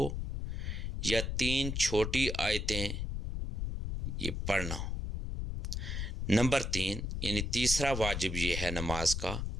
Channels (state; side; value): noise; left; rumble, 3 dB below the sound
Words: یا 3 چھوٹی آیتیں یہ پڑھنا۔ نمبر 3 یعنی تیسرا واجب یہ ہے نماز کا،